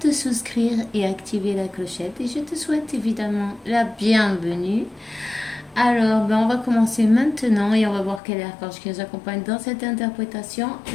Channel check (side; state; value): right; drops out; at 8.2 s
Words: souscrire et activer la clochette et je te souhaite évidemment la bienvenue. Alors, on va commencer maintenant et on va voir quel archange qui nous accompagne dans cette interprétation